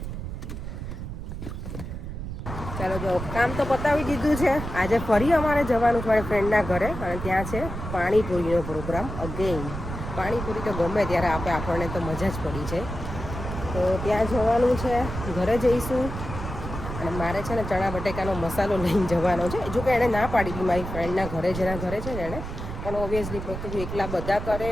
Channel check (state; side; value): noise; right; rumble, 7 dB below the sound